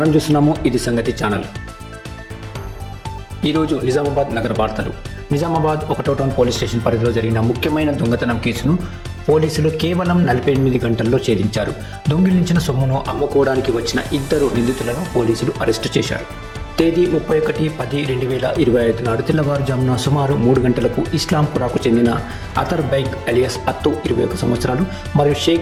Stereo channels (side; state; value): both; identical; correlation 1.00